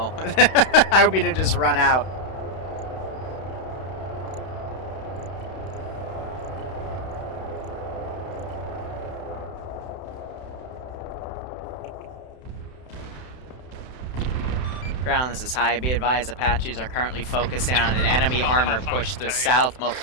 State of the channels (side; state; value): right; late; 31 ms